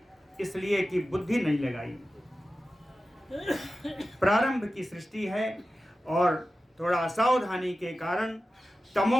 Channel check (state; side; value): normal; both; correlation 0.94